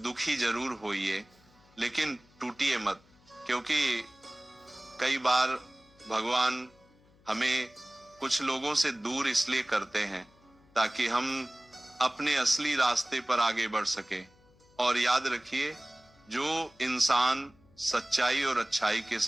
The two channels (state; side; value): noise; left; hum, 30 dB below the sound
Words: जरूर होइए, लेकिन टूटिए मत, क्योंकि कई बार भगवान हमें कुछ लोगों से दूर इसलिए करते हैं ताकि हम अपने असली रास्ते पर आगे बढ़ सके। और याद रखिए, जो इंसान सच्चाई और अच्छाई के